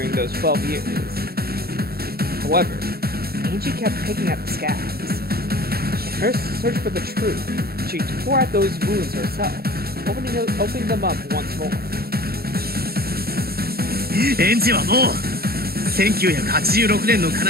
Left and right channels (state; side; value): late; left; 0.45 ms